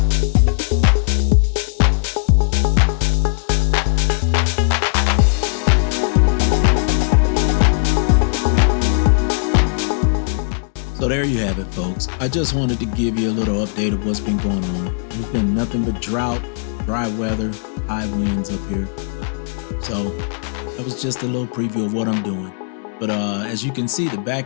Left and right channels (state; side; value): silent; right; digital silence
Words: So there you have it, folks. I just wanted to give you a little update of what's been going on. There's been nothing but drought, dry weather, high winds up here. So that was just a little preview of what I'm doing. But as you can see, the